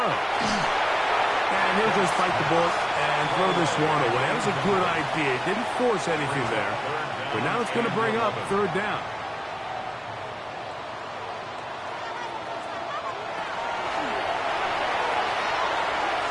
And he'll just bite the bullet and throw this one away. That was a good idea. Didn't force anything there. But now it's going to bring up 3rd down.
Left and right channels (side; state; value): both; identical; correlation 1.00